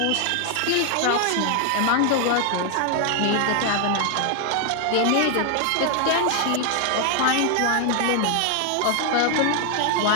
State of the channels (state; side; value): different; both; correlation 0.00